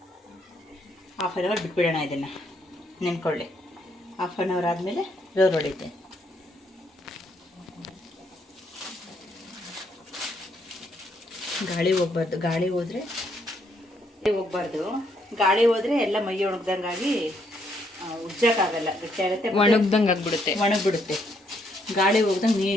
ಹಾಫ್ ಆನ್ ಅವರ್ ಬಿಟ್ಬಿಡೋಣ ಇದನ್ನು, ನೆನ್ಕೊಳ್ಳಿ. ಹಾಫ್ ಆನ್ ಅವರ್ ಆದಮೇಲೆ ರೋಲ್ ಹೊಡಿತೆ. ಗಾಳಿ ಹೋಗ್ಬಾರ್ದು. ಗಾಳಿ ಹೋದರೆ ಗಾಳಿ ಹೋದರೆ ಎಲ್ಲ ಮೈ ಒಣಗ್ದಂಗಾಗಿ ಉಜ್ಜಕ್ಕಾಗಲ್ಲ, ಗಟ್ಟಿ ಆಗುತ್ತೆ, ಒಣಗ್ದಂಗೆ ಆಗ್ಬಿಡುತ್ತೆ. ಗಾಳಿ ಹೋಗ್ದಂಗೆ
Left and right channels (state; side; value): normal; both; correlation 0.73